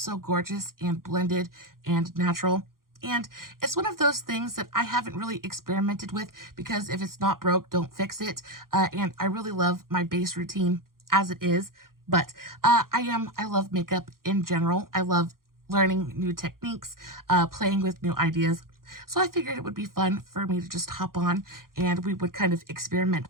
gorgeous and blended and natural. And it's one of those things that I haven't really experimented with, because if it's not broke, don't fix it. And I really love my base routine as it is. But I love makeup in general. I love learning new techniques, playing with new ideas. So I figured it would be fun for me to just hop on and we would kind of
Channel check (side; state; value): left; late; 0.92 ms